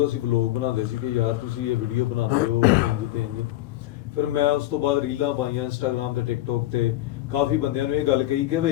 ਅਸੀਂ ਵਲੋਗ ਬਣਾਉਂਦੇ ਸੀ ਕਿ ਯਾਰ ਤੁਸੀਂ ਇਹ ਵੀਡੀਓ ਬਣਾਉਂਦੇ ਹੋ ਇੰਜ ਤੇ ਇੰਜ। ਫਿਰ ਮੈਂ ਉਸ ਤੋਂ ਬਾਅਦ ਰੀਲਾਂ ਪਾਈਆਂ ਇੰਸਟਾਗ੍ਰਾਮ ਤੇ ਟਿਕਟੋਕ ਤੇ, ਕਾਫੀ ਬੰਦਿਆਂ ਨੂੰ ਇਹ ਗੱਲ ਕਹੀ ਕਿ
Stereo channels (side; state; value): right; quieter; 15.5 dB